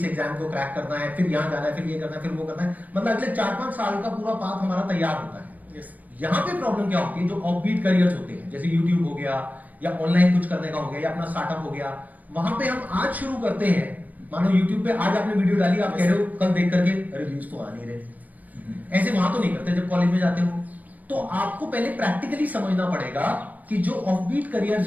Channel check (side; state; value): left; late; 0.078 ms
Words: एग्जाम को क्रैक करना है, फिर यहाँ जाना है, फिर ये करना है, फिर वो करना है, मतलब अगले 4-5 साल का पूरा पाथ हमारा तैयार होता है। यहाँ पे प्रॉब्लम क्या होती है, जो ऑफबीट करियर्स होते हैं जैसे यूट्यूब हो गया या ऑनलाइन कुछ करने का हो गया या अपना स्टार्टअप हो गया, वहां पे हम आज शुरू करते हैं। मानो यूट्यूब पे आज आपने वीडियो डाली, आप कह रहे हो कल देख करके अरे व्यूज तो आ नहीं रहे, ऐसे वहां तो नहीं करते। जब कॉलेज में जाते हो तो आपको पहले प्रैक्टिकली समझना पड़ेगा कि जो ऑफबीट